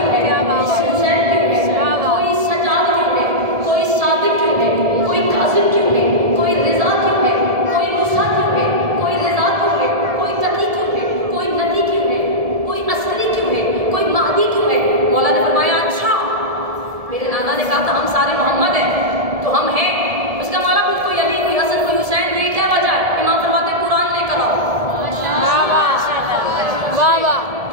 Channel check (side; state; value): left; late; 1.7 ms